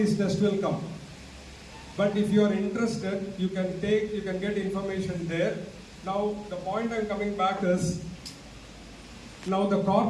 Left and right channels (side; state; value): both; identical; correlation 1.00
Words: tests will come. But if you are interested, you can get information there. Now, the point I'm coming back is, now the